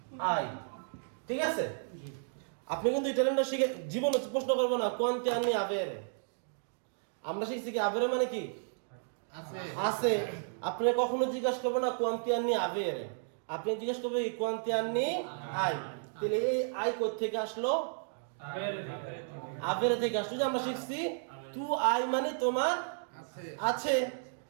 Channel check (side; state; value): left; silent; digital silence